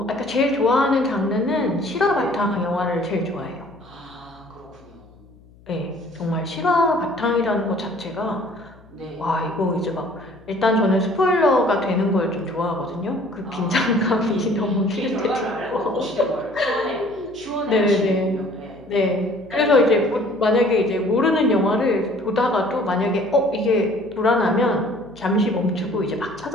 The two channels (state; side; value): noise; left; hum, 26 dB below the sound